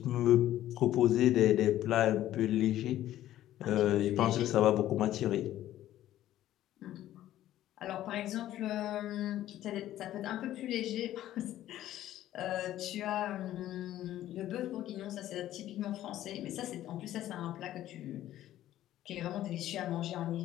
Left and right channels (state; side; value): quieter; right; 13.3 dB